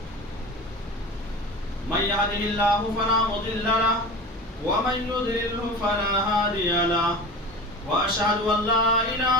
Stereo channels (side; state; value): both; normal; correlation 0.33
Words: من يهده الله فلا مضل له ومن يضلله فلا هادي له وأشهد أن لا